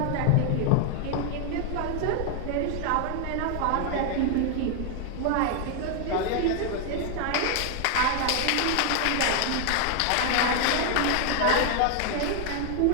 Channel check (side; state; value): both; different; correlation 0.00